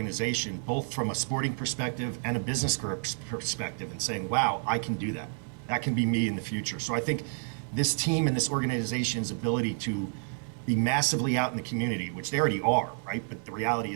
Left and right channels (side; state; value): left; silent; 58 dB below the other